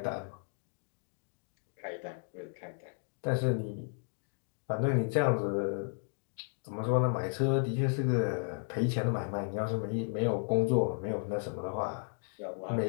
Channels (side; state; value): right; silent; 55 dB below the other